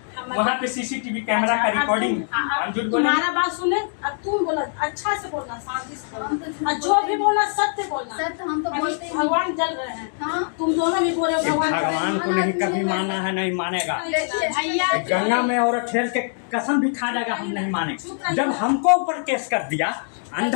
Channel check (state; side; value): silent; right; 63 dB below the other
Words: वहाँ पे सीसीटीवी कैमरा का रिकॉर्डिंग है, हम झूठ बोले? तुम्हारा बात सुने, अब तुम बोला अच्छा से बोलना, शांति से बोलना, और जो भी बोलना सत्य बोलना। सत्य हम तो अभी बोलते ही नहीं। भगवान जल रहे हैं, हाँ। तुम दोनों भी बोल रहे हो भगवान जल रहे हैं। भगवान को नहीं कभी माना है, नहीं मानेगा। देखिए भैया गंगा में और खेल के कसम भी खा जाएगा, हम नहीं मानेंगे। जब हमको ऊपर केस कर दिया